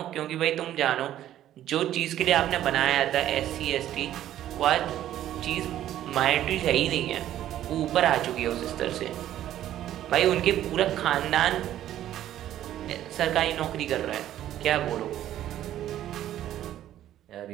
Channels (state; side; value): quieter; left; 12.3 dB